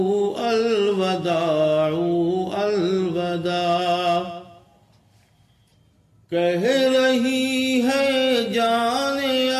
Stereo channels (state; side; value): identical; both; correlation 1.00